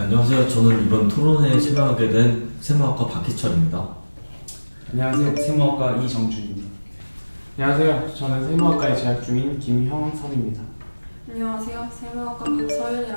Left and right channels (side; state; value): both; inverted; correlation -1.00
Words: 저는 이번 토론회에 참여하게 된 세무학과 박희철입니다. 안녕하세요. 세무학과 이정준입니다. 안녕하세요. 저는 세무학과에 재학 중인 김형섭입니다. 안녕하세요. 세무학과